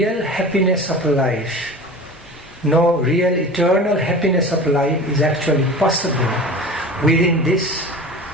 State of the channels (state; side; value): normal; both; correlation 0.36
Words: happiness of life, no real eternal happiness of life is actually possible within this